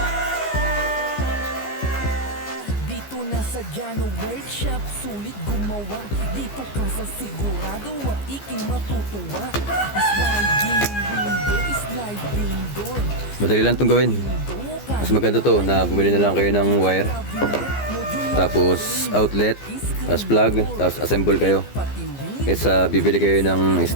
Dito na sa Jano Workshop, sulit gumawa. Dito ka sa sigurado at iking matutuwa. Madali lang itong gawin. Mas maganda to na bumili na lang kayo ng wire. Tapos outlet, tapos plug, tapos assemble kayo. Kaysa bibili kayo ng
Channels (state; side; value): late; right; 15 ms